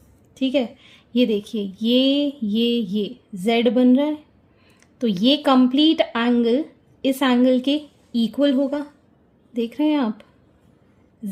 ठीक है, ये देखिए ये Z बन रहा है, तो ये कंप्लीट एंगल इस एंगल के इक्वल होगा। देख रहे हैं आप,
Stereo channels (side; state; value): both; identical; correlation 1.00